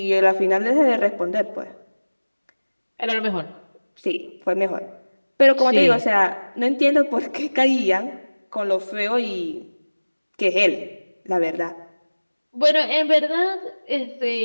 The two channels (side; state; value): both; inverted; correlation -1.00